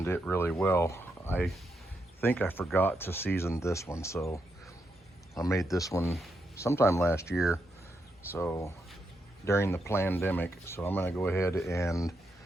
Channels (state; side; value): normal; both; correlation 0.82